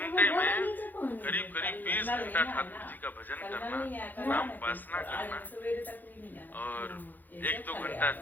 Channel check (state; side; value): late; right; 0.086 ms